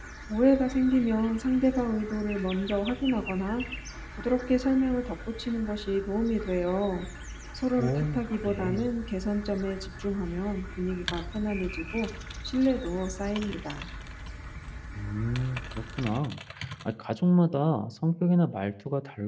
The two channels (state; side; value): identical; both; correlation 1.00